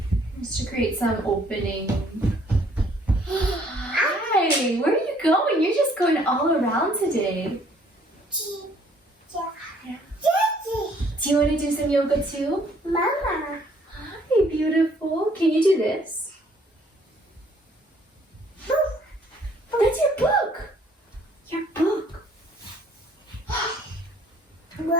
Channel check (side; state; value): both; normal; correlation 0.62